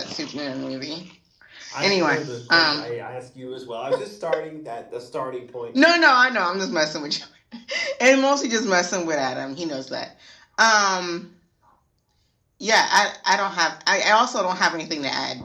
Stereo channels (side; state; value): both; identical; correlation 1.00